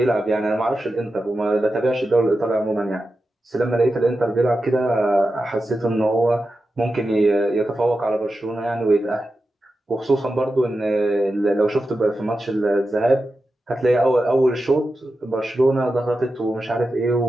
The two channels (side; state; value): both; normal; correlation 0.91